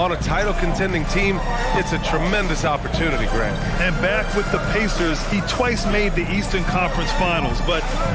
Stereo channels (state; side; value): identical; both; correlation 1.00